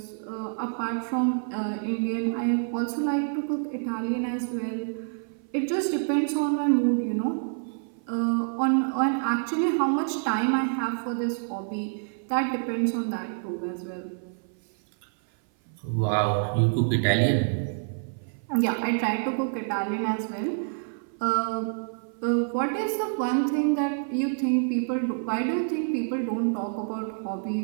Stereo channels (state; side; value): silent; left; 56 dB below the other